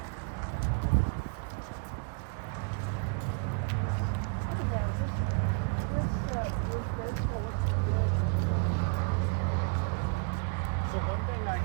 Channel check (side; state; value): left; quieter; 36.8 dB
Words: So one thing I